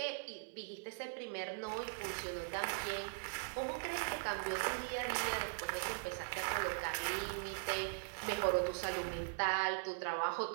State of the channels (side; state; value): left; silent; digital silence